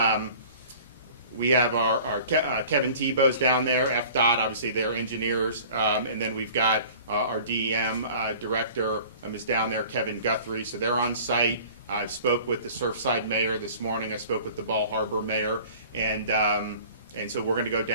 Kevin Tebow's down there. FDOT, obviously, they're engineers, and then we've got our DEM director is down there, Kevin Guthrie. So they're on site. I spoke with the Surfside mayor this morning. I spoke with the Ball Harbor mayor, and so we're going to go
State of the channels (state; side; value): inverted; both; correlation -0.45